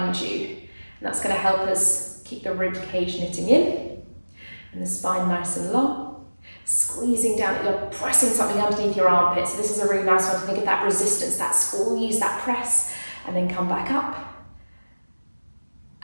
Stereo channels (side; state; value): both; inverted; correlation -1.00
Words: you. And that's going to help us keep the rib cage knitting in and the spine nice and long. Squeezing down, you're pressing something underneath your armpit. So this is a really nice one to think of that resistance, that squeeze, that press, and then come back up.